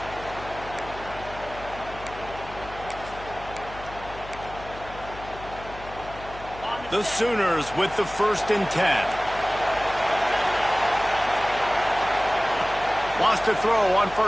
The Sooners with the 1st and 10. Wants to throw on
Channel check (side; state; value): left; noise; hum, 15 dB below the sound